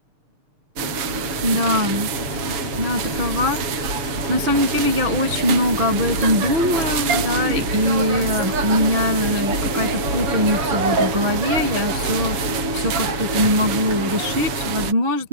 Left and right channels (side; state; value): left; late; 7.1 ms